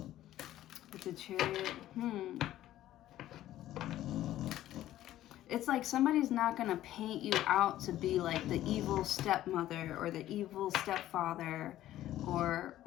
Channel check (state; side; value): quieter; right; 13.6 dB